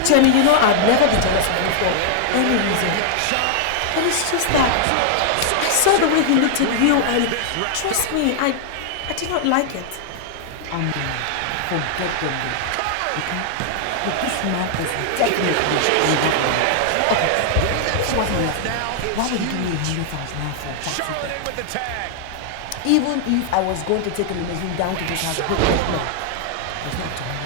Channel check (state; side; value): different; both; correlation -0.01